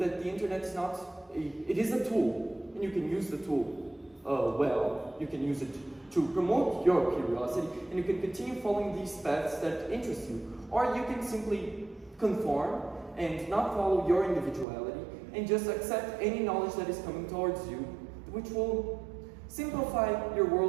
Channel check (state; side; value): drops out; left; at 14.7 s